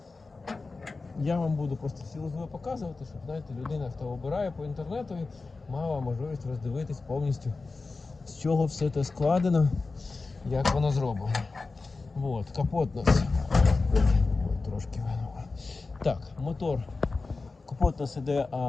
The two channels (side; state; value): right; quieter; 3.9 dB